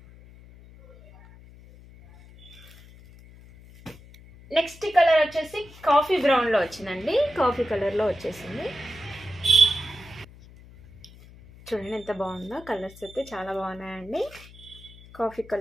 నెక్స్ట్ కలర్ వచ్చేసి కాఫీ బ్రౌన్లో వచ్చిందండి, కాఫీ కలర్లో వచ్చేసింది. చూడండి ఎంత బాగుందో. కలర్స్ అయితే చాలా బాగున్నాయండి. కాఫీ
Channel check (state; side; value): noise; left; hum, 21 dB below the sound